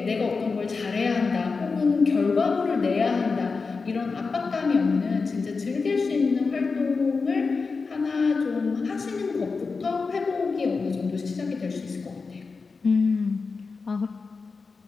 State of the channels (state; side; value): quieter; right; 4.5 dB